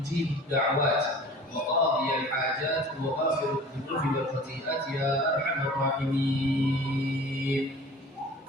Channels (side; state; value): both; normal; correlation 0.42